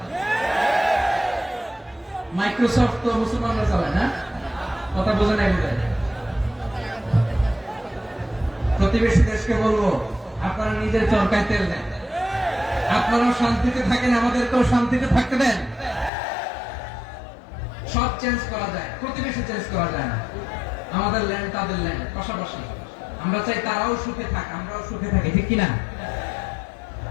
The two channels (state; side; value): drops out; right; at 16.1 s